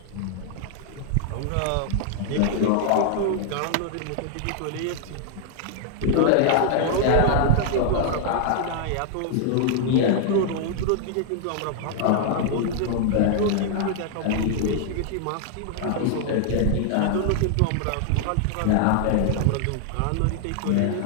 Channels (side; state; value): both; different; correlation 0.00